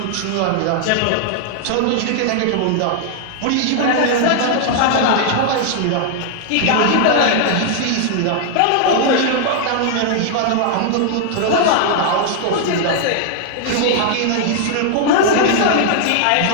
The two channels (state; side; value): different; both; correlation -0.01